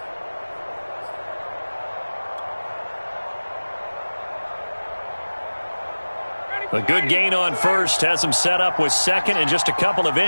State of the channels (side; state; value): both; inverted; correlation -1.00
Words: A good gain on first has them set up with second and just a couple of